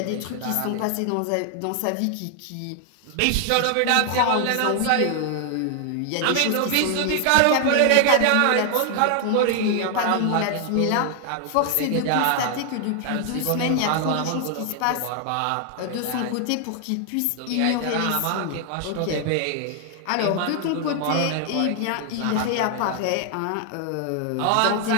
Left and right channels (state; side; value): different; both; correlation 0.00